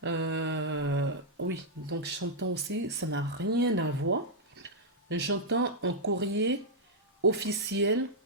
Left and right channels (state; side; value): normal; both; correlation -0.06